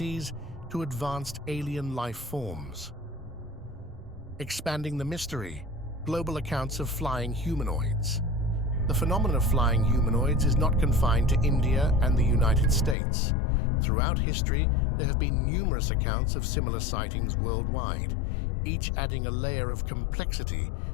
to advanced alien life forms. Expanding the mystery, global accounts of flying humanoids. The phenomenon of flying humanoids is not confined to India and the United States. Throughout history, there have been numerous accounts of similar sightings worldwide, each adding a layer of complexity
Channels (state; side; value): drops out; right; at 13.0 s